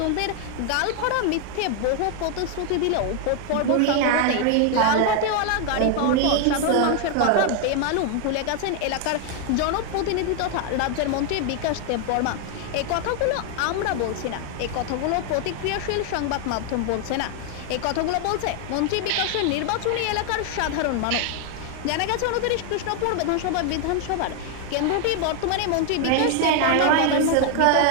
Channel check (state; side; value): different; both; correlation 0.00